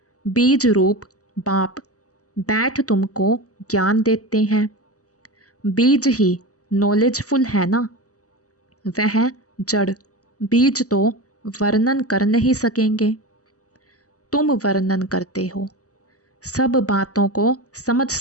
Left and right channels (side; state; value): right; late; 0.66 ms